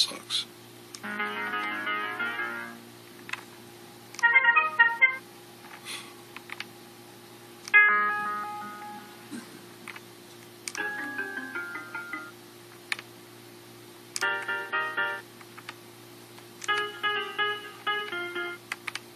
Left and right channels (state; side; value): identical; both; correlation 1.00